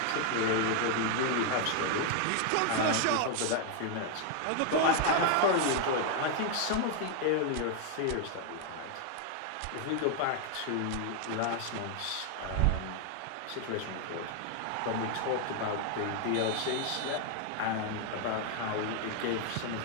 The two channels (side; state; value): both; different; correlation 0.00